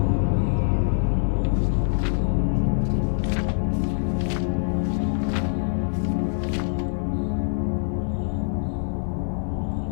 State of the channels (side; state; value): right; silent; 59 dB below the other